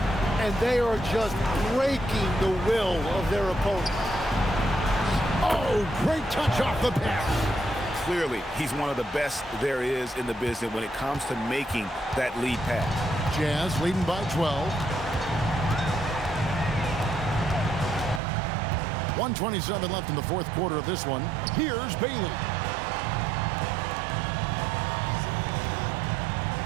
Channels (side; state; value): left; drops out; at 18.2 s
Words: And they are just breaking the will of their opponent. Oh, great touch off the pass. clearly, he's one of the best there is in the business when it comes to making that lead pass. Jazz leading by 12. 1:27 left in the fourth quarter of this one. Here's Bailey.